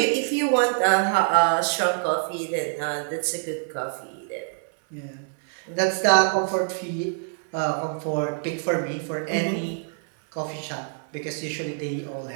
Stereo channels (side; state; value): left; silent; digital silence